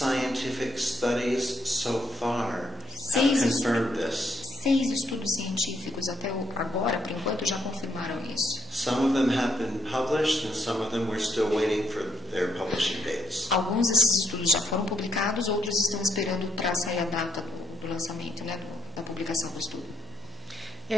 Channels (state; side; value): normal; both; correlation 0.73